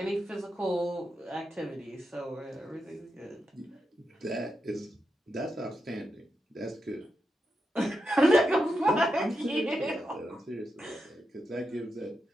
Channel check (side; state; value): both; normal; correlation 0.86